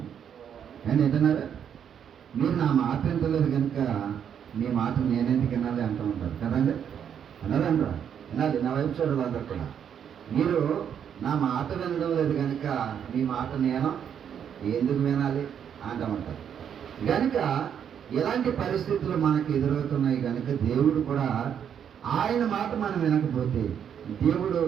నేను ఏంటన్నారా, మీరు నా మాట వింటలేదు కనుక మీ మాట నేనెందుకు వినాలి అంటూ ఉంటారు కదండి. అన్నారంటారా? వినాలి. నా వైపు చూడాలి అందరు కూడా. మీరు నా మాట వినడం లేదు కనుక మీ మాట నేను ఎందుకు వినాలి అంటామంటారు. కనుక ఎలాంటి పరిస్థితులు మనకు ఎదురవుతున్నాయి కనుక దేవుడు కూడా ఆయన మాట మనం వినకపోతే దేవుడు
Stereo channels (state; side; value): quieter; left; 8.5 dB